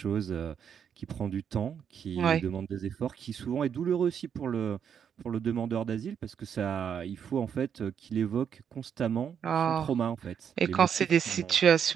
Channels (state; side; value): quieter; left; 7.9 dB